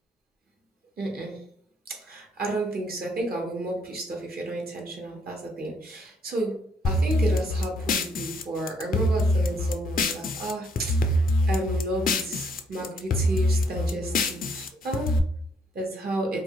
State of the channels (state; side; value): normal; both; correlation 0.69